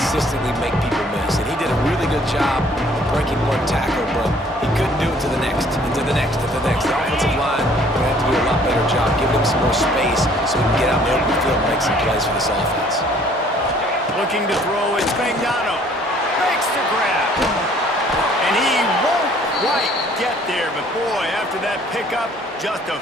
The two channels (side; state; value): both; normal; correlation 0.58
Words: make people miss, and he did a really good job of breaking one tackle, but he couldn't do it to the next, and to the next, and to the next. The offensive line will have to do a lot better job, giving him some more space so he can get out in the open field and make some plays for this offense. Looking to throw, it's Spagnano. Makes the grab. And he won't quite get there, but boy, after that pickup, just a